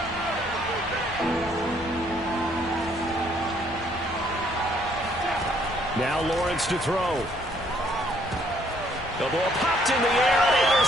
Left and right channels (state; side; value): normal; both; correlation 0.66